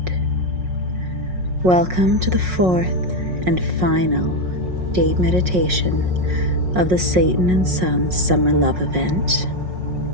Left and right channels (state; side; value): late; left; 5.5 ms